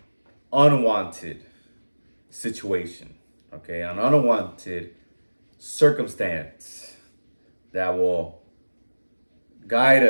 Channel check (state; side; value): inverted; both; correlation -1.00